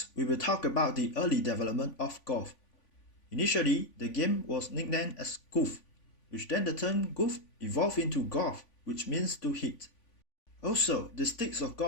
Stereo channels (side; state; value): right; late; 3.5 ms